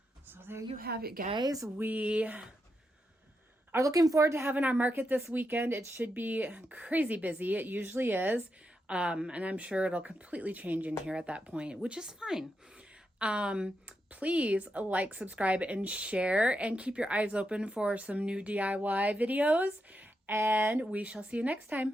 So there you have it, guys. We are looking forward to having our market this weekend. It should be crazy busy. It usually is. And I'm sure it'll completely change in here at that point, which is fine. Please like, subscribe, and share, and keep your eyes open for some new DIY videos. And we shall see you next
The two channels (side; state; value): both; normal; correlation 0.85